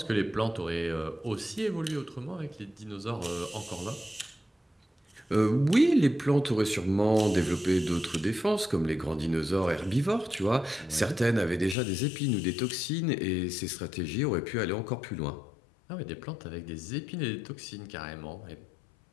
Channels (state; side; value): drops out; right; at 11.8 s